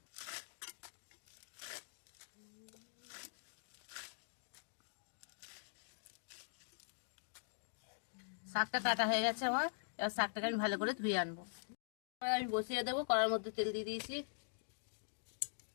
শাকটা কাটা হয়ে গেছে আমার, এবার শাকটাকে আমি ভালো করে ধুয়ে আনবো। এবার আমি বসিয়ে দেবো, কড়ার মধ্যে তেল দিয়ে দিয়েছি।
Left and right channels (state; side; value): silent; right; digital silence